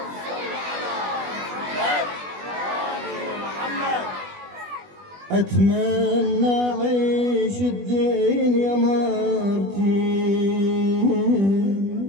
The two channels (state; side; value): late; left; 20 ms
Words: اتمنى اعيش الدنيا مرتين،